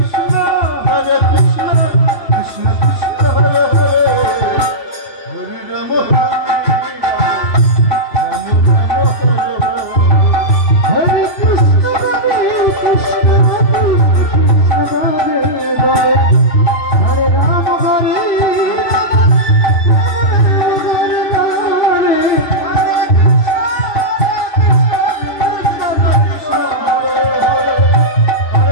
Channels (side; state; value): right; late; 3.4 ms